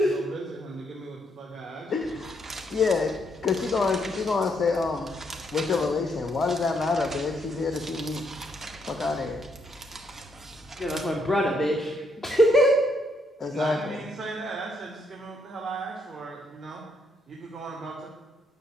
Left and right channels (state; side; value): normal; both; correlation 0.74